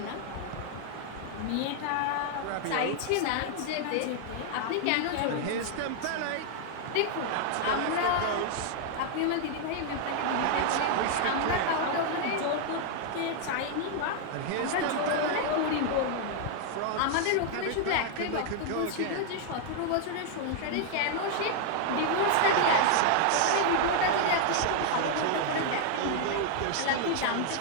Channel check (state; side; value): different; both; correlation 0.00